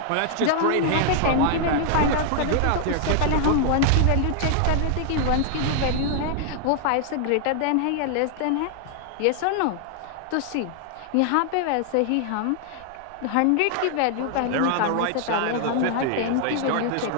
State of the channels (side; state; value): both; different; correlation 0.00